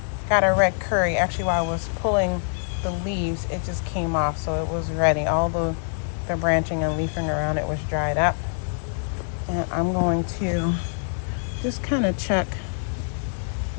got a red curry. Actually, while I was pulling the leaves, it just came off, so it was ready. All the branching and leafing around it was dried up. And I'm going to just kind of check.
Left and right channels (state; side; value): silent; right; 62 dB below the other